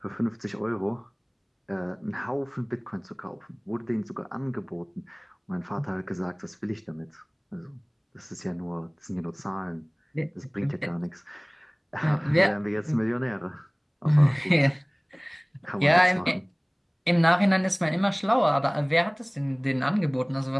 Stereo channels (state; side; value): identical; both; correlation 1.00